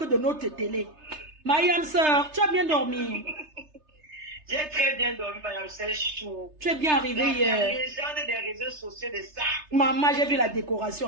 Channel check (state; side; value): late; left; 3.3 ms